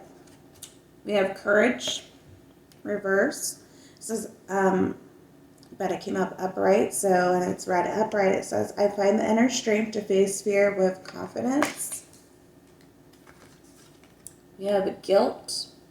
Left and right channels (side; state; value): both; identical; correlation 1.00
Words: We have courage, reverse. It says, but it came up upright, so, and it's read upright. It says, I find the inner strength to face fear with confidence. We have guilt.